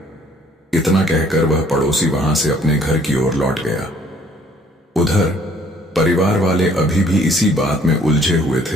इतना कहकर वह पड़ोसी वहां से अपने घर की ओर लौट गया। उधर परिवार वाले अभी भी इसी बात में उलझे हुए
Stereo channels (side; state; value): both; normal; correlation 0.60